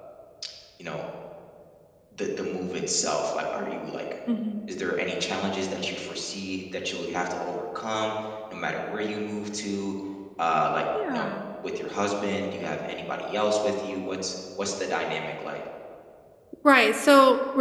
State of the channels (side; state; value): both; identical; correlation 1.00